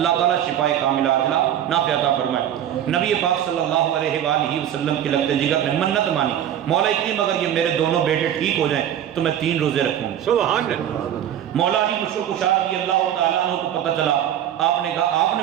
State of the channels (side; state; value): left; quieter; 10.6 dB